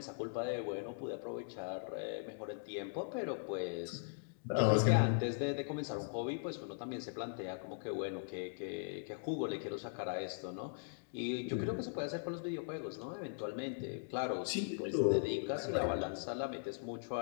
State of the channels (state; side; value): silent; right; digital silence